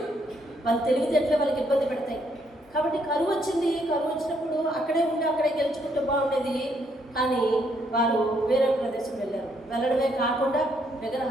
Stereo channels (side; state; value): both; normal; correlation 0.72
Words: వాళ్ళ తెలివితేటలే వాళ్ళకి ఇబ్బంది పెడతాయి. కాబట్టి కరువు వచ్చింది. కరువు వచ్చినప్పుడు అక్కడే ఉండి అక్కడే గెలుచుకుంటూ బాగుండేది. కానీ వారు వేరే ప్రదేశం వెళ్ళారు. వెళ్ళడమే కాకుండా